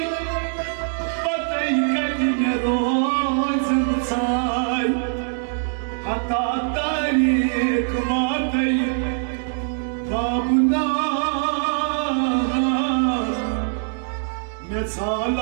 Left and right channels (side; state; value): left; silent; digital silence